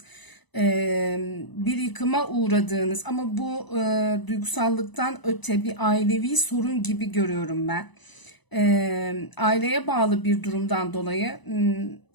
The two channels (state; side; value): late; right; 1.0 ms